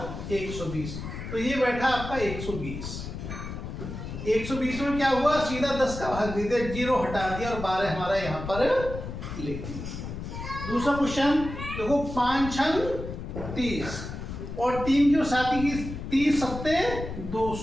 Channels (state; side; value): noise; left; rumble, 8 dB below the sound